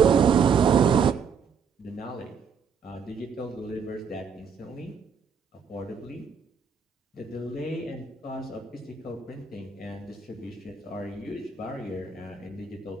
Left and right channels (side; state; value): left; quieter; 6.2 dB